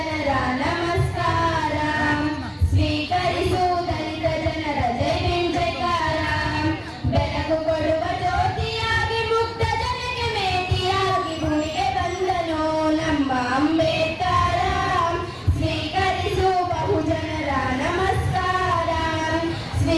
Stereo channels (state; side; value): identical; both; correlation 1.00